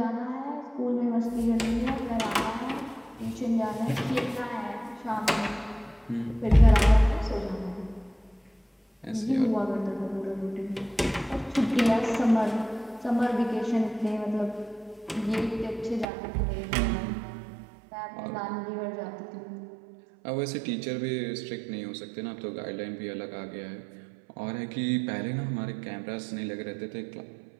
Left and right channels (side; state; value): left; drops out; at 16.1 s